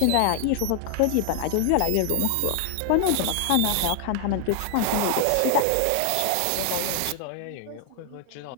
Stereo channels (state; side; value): different; both; correlation 0.00